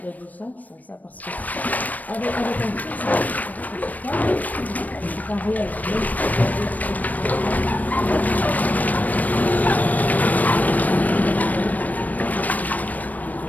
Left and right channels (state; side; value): late; right; 0.078 ms